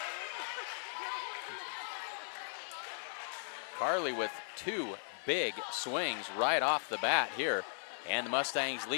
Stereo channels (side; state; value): right; silent; digital silence